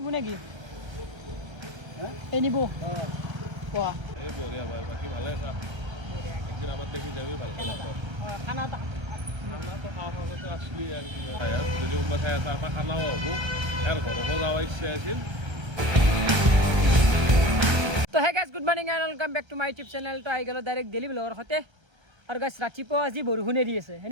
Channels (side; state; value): left; late; 1.3 ms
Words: lagi. Ini bu. Wah. বঢ়িয়া ভাই বাকি ভালে আছা একদিন আমার দেখি যাবি ভালো খানা তো খানাটো খাওয়ার মাজতে আসলি আর কি যদি কোনোবা ঠাই আছে আমাৰ খানাও হ'ব আৰু ঘৰকো যাব ইচ্ছা আছিল তো hey guys good morning and welcome back to my YouTube channel তো আহি গ'লো ডাইৰেক্ট ডেইলি ব্লগৰ সৈতে আৰু গাইজ ৰাতিপুৱা আজি বৰষুণে দি আছে